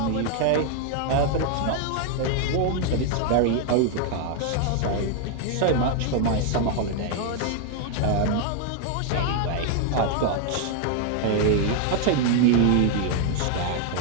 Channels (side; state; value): both; different; correlation 0.00